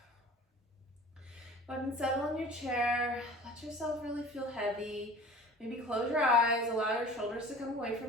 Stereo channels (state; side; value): normal; both; correlation 0.43